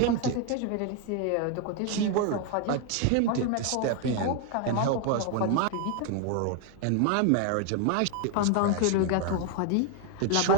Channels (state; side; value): different; both; correlation 0.01